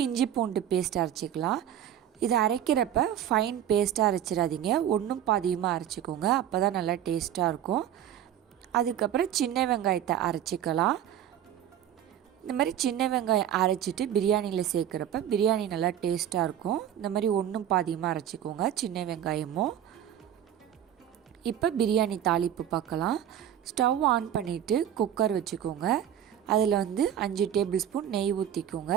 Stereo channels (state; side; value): quieter; left; 10.4 dB